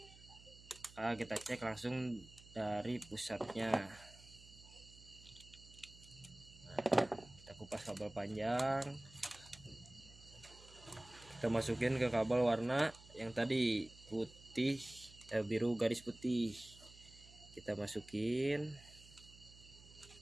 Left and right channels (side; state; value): right; noise; hum, 21 dB below the sound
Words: kita cek langsung dari pusatnya. Nah, kita kupas kabel panjang, kita masukin ke kabel warna yang tadi putih, biru garis putih. Kita masukin.